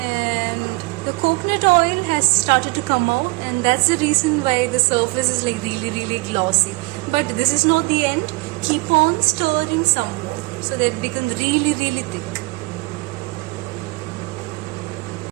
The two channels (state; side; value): quieter; left; 25.5 dB